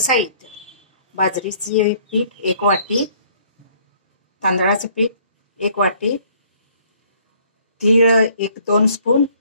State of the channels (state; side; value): inverted; both; correlation -0.60